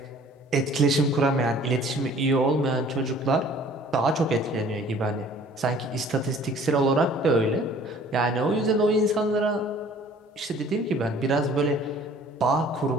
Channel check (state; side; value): normal; both; correlation 0.52